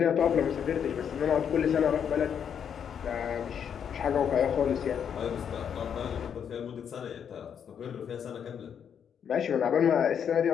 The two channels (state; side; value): quieter; right; 8.0 dB